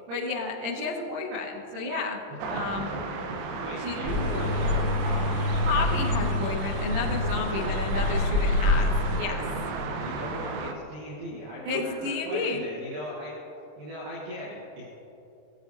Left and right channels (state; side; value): late; left; 26 ms